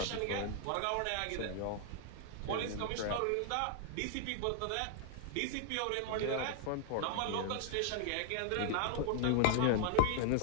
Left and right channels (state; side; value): different; both; correlation -0.01